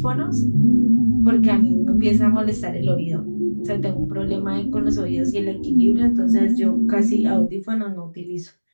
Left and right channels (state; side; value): inverted; both; correlation -1.00